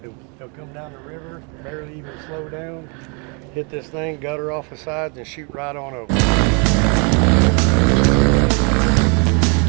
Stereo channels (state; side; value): quieter; left; 34.7 dB